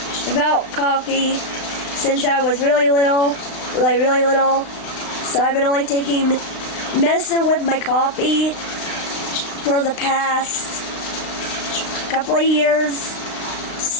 coffee since I was really little. So I've been only taking medicine with my coffee for the past couple of years.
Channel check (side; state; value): right; late; 36 ms